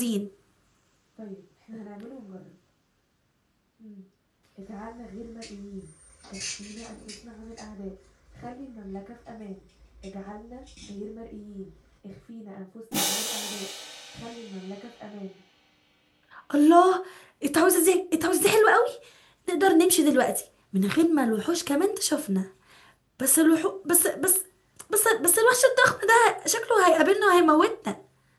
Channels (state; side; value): identical; both; correlation 1.00